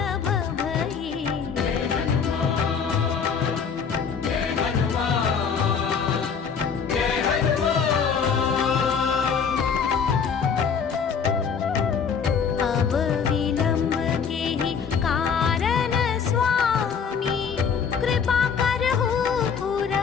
भई। अब विलंब के ही कारण स्वामी, कृपा करहु पुर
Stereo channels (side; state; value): right; quieter; 6.5 dB